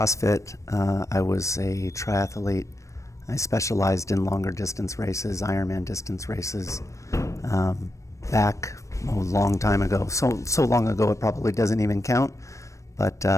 I was a triathlete. I specialized in longer distance races, Ironman distance races, back a long time ago. So long ago it probably doesn't even count, but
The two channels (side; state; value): right; late; 0.15 ms